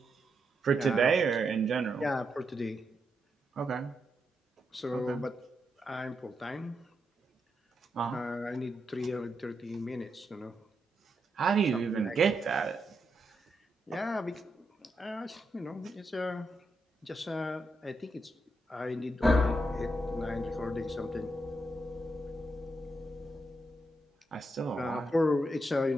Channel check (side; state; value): both; normal; correlation 0.83